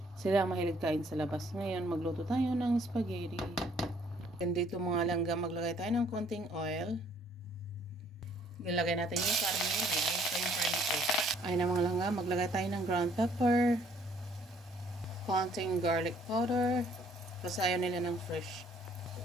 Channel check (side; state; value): both; normal; correlation 0.62